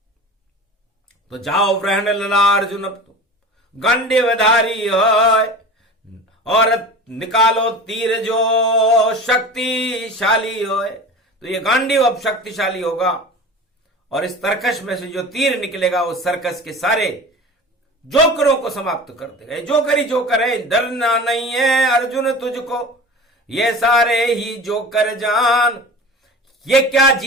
तो जाओ ग्रहण लला अर्जुन, अब तो गांडीवधारी हो और निकालो तीर जो शक्तिशाली हो। तो ये गांडीव अब शक्तिशाली होगा और इस तर्कश में से जो तीर निकलेगा वो सर्कस के सारे जोकरों को समाप्त कर देगा। जोकर ही जोकर है, डरना नहीं है अर्जुन तुझको, ये सारे ही जोकर जान, ये क्या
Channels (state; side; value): normal; both; correlation 0.36